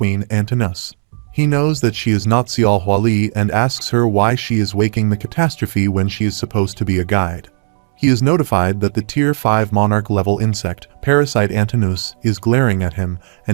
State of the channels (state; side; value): silent; left; 69 dB below the other